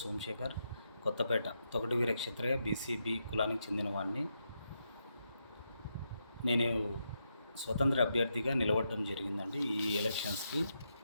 సోమశేఖర్, కొత్తపేట తొగటి వీర క్షత్రియ బీసీబీ కులానికి చెందినవాడిని. నేను స్వతంత్ర అభ్యర్థిగా నిలబడడం జరిగిందండి. ఈ ఎలక్షన్స్కి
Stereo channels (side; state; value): both; inverted; correlation -0.83